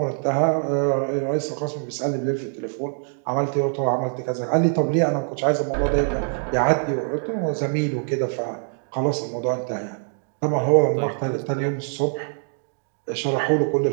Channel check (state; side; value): silent; left; 60 dB below the other